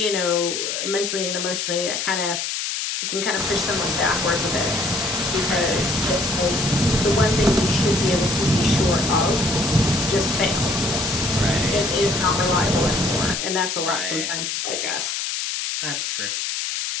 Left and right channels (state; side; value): noise; left; hiss, 2 dB below the sound